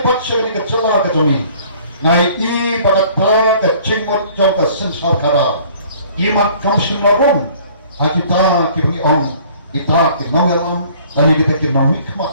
pat segani kecela kajongi ngai i bagata kecingmot jong kesensar kara imat kamsin larung kita kibungi ong kita kinongelam dan kita kinomi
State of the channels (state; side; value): inverted; both; correlation -0.54